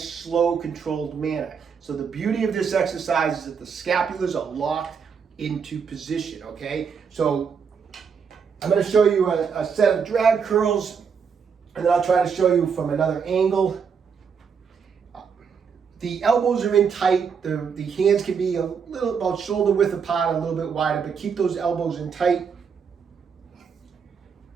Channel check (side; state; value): left; quieter; 6.3 dB